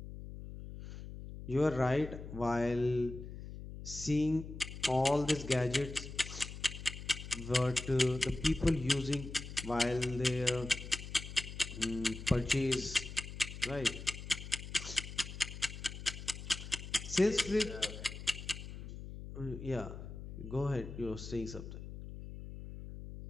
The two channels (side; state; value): left; noise; hum, 10 dB below the sound